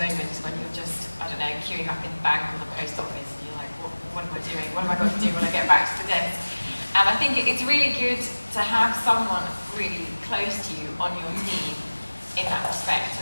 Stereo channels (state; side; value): inverted; both; correlation -1.00